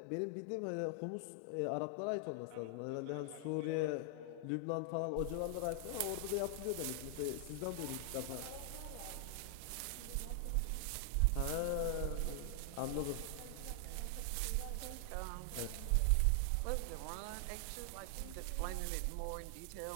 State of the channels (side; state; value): both; different; correlation 0.00